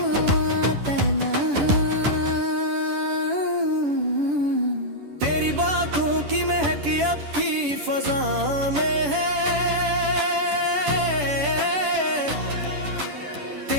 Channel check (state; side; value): late; left; 10 ms